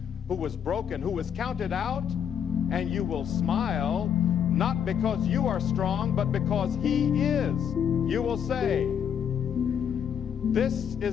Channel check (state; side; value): quieter; right; 8.3 dB